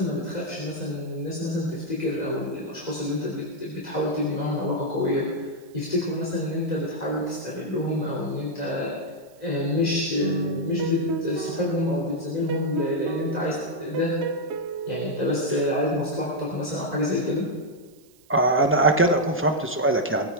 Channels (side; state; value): right; noise; hiss, 30 dB below the sound